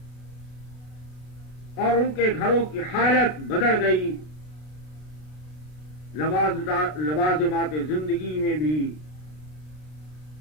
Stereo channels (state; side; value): late; right; 33 ms